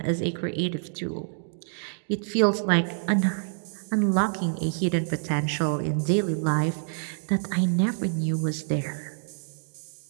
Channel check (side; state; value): left; silent; digital silence